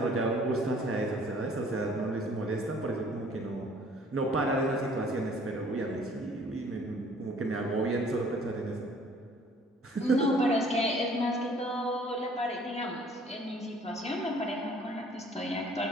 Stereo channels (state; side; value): normal; both; correlation 0.56